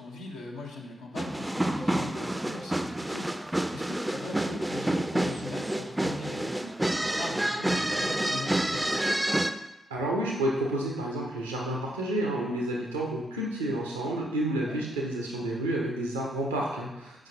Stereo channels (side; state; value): both; normal; correlation 0.81